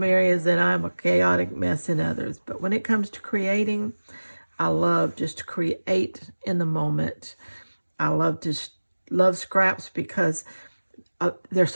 areas and I'm a chaotic mess in others. But when it comes to creating, I love just to create in the moment. I love scraps because they're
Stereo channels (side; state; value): both; inverted; correlation -1.00